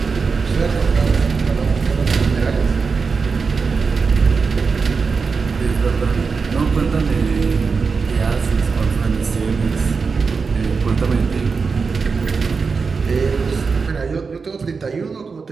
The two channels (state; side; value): quieter; left; 5.0 dB